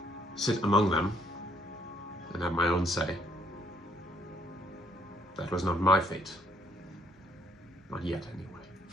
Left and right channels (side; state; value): both; normal; correlation 0.65